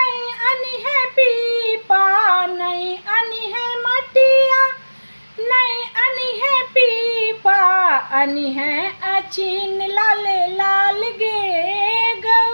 अनी है पीपा। नहीं अनी है मटिया नहीं अनी है पीपा। अनी है अचीन लाले लाल गे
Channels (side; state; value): both; inverted; correlation -1.00